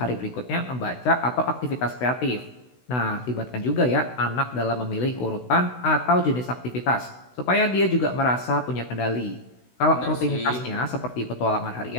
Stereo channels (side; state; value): right; late; 16 ms